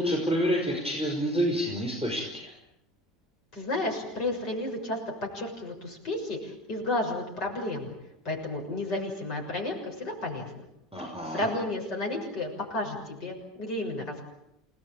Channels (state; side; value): normal; both; correlation 0.34